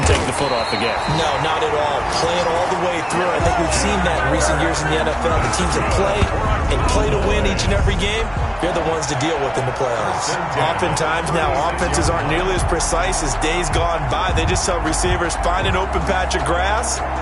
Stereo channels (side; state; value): both; identical; correlation 1.00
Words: take the foot off the gas. No, not at all. Play it all the way through. I think we've seen that in recent years in the NFL. The teams that play to win each and every game, they're the ones to deal with in the playoffs. Oftentimes now, offenses aren't nearly as precise as days gone by. They just tell receivers, find an open patch of grass